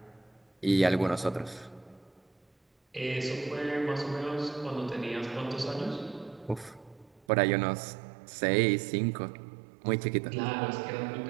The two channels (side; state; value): left; drops out; at 7.2 s